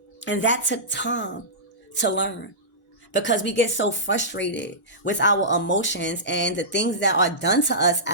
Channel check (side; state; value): both; normal; correlation -0.17